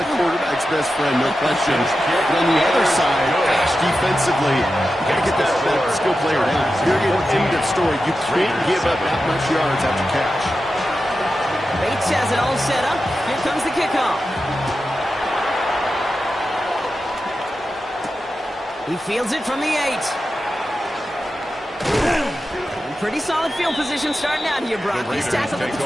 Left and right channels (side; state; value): both; normal; correlation 0.91